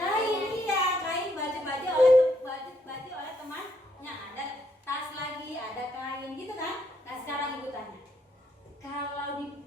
iya, kain baju-baju oleh temannya. Ada tas lagi, ada kain gitu kan? Nah sekarang ibu tanya, kalau di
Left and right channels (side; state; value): both; normal; correlation 0.73